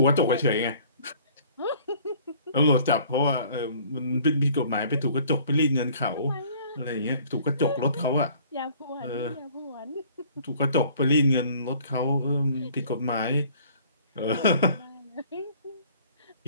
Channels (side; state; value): both; inverted; correlation -0.54